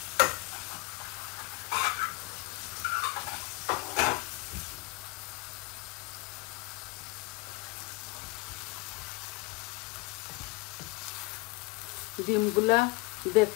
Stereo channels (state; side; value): quieter; right; 23.3 dB